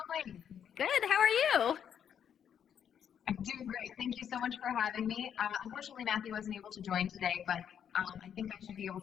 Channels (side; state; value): right; quieter; 8.6 dB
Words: Good, how are you? I'm doing great. Thank you so much for having me. Unfortunately, Matthew wasn't able to join today, but I think I should be able